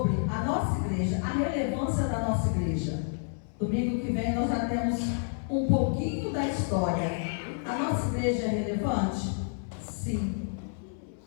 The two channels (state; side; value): silent; right; 58 dB below the other